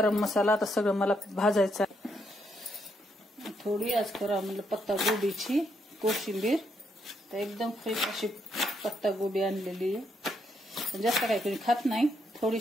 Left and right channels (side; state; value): both; normal; correlation 0.76